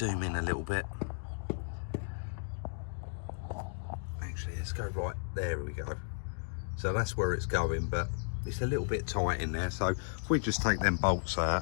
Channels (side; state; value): right; silent; digital silence